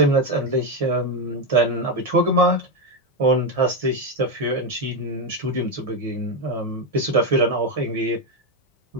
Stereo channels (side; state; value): both; normal; correlation 0.08